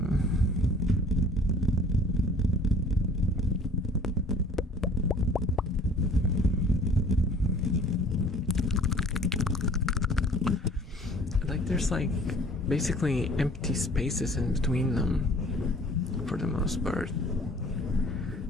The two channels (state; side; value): normal; both; correlation 0.50